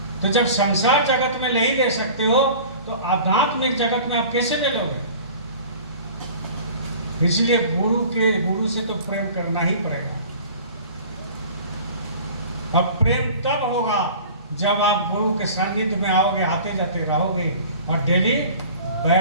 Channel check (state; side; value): inverted; both; correlation -0.43